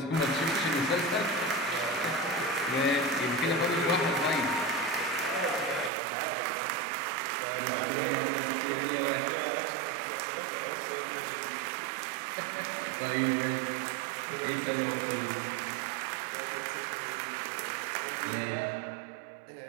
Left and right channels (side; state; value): left; drops out; at 5.9 s